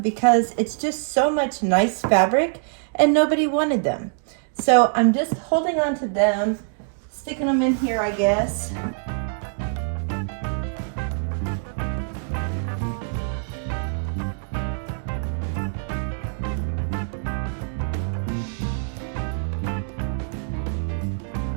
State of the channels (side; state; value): left; silent; digital silence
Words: because it's just so much nice fabric and nobody wanted them. So I'm just holding on to them, sticking them in here, I guess.